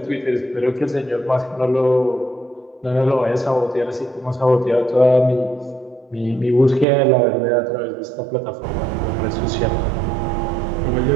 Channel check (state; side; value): drops out; left; at 6.9 s